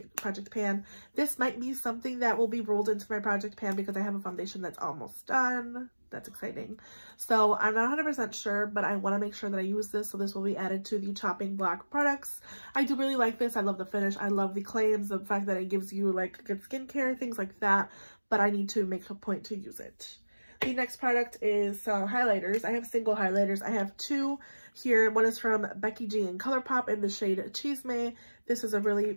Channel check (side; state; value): both; inverted; correlation -1.00